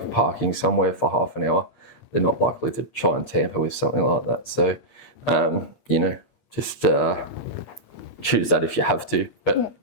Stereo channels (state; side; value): late; right; 8.5 ms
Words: parking somewhere for half an hour, they're not likely to try and tamper with something like that. So, just choose that if you have to. But